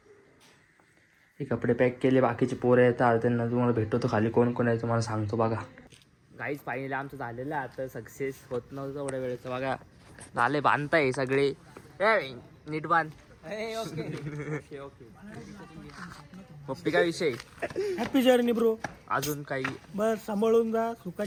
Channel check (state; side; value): identical; both; correlation 1.00